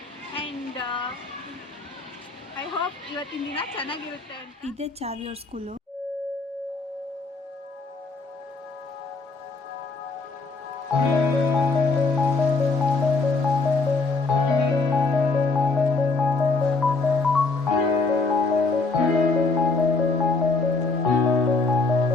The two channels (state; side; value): quieter; right; 3.8 dB